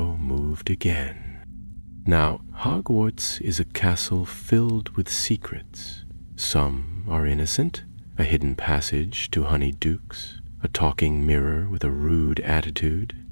moved again. Now, Hogwarts is a castle filled with secrets. Some are innocent, a hidden passage to honeyed dukes, a talking mirror with a rude attitude,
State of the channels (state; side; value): inverted; both; correlation -1.00